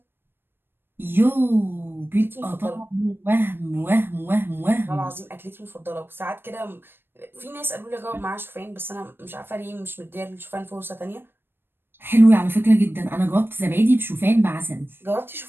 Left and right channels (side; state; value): left; late; 0.10 ms